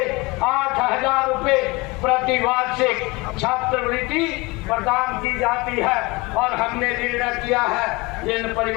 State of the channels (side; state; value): right; quieter; 24.5 dB